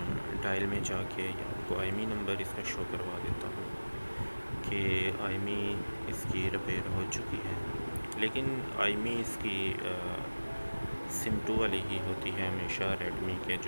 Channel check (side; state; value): both; inverted; correlation -1.00